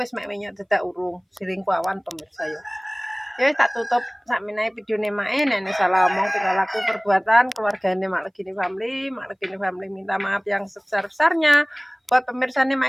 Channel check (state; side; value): identical; both; correlation 1.00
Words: mek menyok dadak urung. Siring kuawan pemirsa ya. Ya wis tak tutup sakmenae videone mae. Nek salah omong tinggal laku perbuatan keluargane Mak Legini Family. Mak Legini Family minta maaf yang sebesar-besarnya. Buat pemirsane